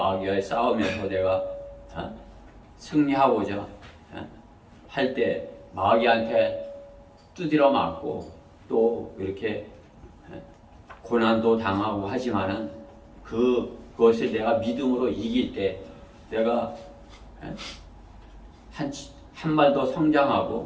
싸움에서 내가 승리하고자 할 때 마귀한테 두드려 맞고 또 이렇게 고난도 당하고 하지만은 그것을 내가 믿음으로 이길 때 내가 한 발 더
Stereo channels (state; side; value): identical; both; correlation 1.00